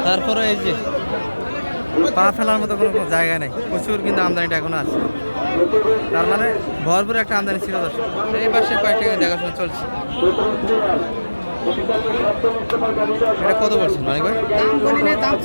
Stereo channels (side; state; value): both; inverted; correlation -1.00